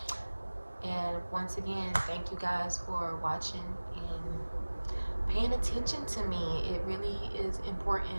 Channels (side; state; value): both; inverted; correlation -1.00